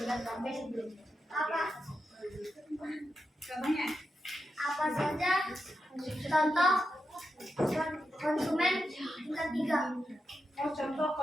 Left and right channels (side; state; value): both; normal; correlation 0.87